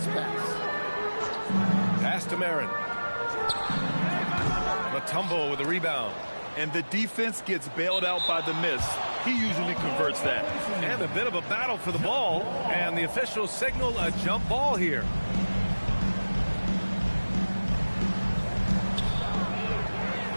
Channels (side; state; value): both; inverted; correlation -1.00